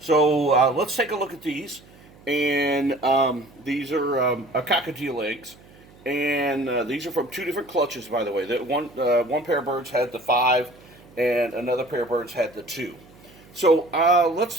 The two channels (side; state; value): right; noise; hum, 25 dB below the sound